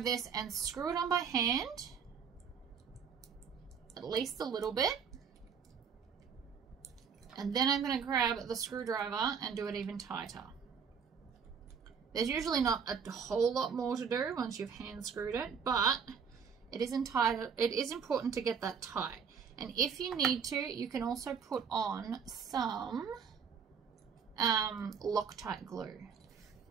this and screw it on by hand, at least a little bit. And then I'm going to grab the screwdriver and do it even tighter. There's usually not a whole lot more to do once you've hand screwed it, but it is important to get that tight. And if you need to, you can also put on some Loctite glue.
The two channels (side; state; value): left; quieter; 6.6 dB